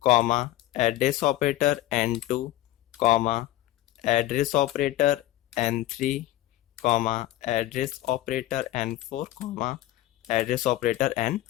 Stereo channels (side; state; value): right; quieter; 15.0 dB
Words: comma address operator n2 comma address operator n3 comma address operator n4 comma address operator